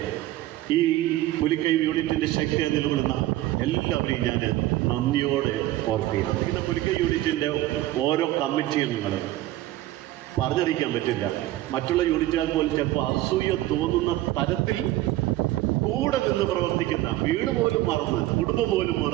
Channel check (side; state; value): left; quieter; 15.8 dB